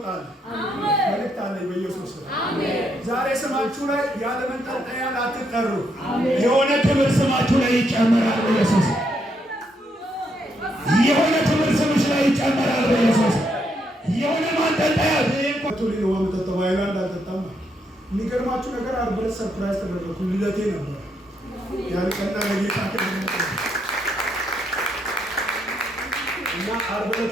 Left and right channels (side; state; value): both; normal; correlation 0.76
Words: አለ። መልእክት አለኝ በኢየሱስ ስም። ዛሬ ስማችሁ ላይ ያለ መንጠልጠያ አትጠሩ። የሆነ ክብር ስማችሁ ላይ ይጨመራል በኢየሱስ። የሆነ ክብር ስምሽ ላይ ይጨመራል በኢየሱስ። የሆነ ማንጠልጠያ ቶሊኖ ወምጠጣው አይላንድ አልጠጣም። የሚገርማችሁ ነገር ዓርብ ዕለት ሰርፕራይዝ ተደረኩ። ልደቴ ነበር። ያልቀና ለጌታ እና ዓርብ ዕለት